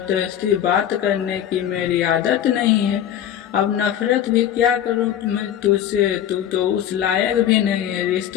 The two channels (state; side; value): quieter; right; 10.5 dB